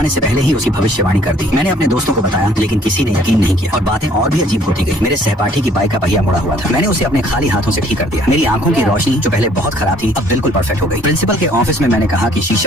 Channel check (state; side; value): normal; both; correlation 0.59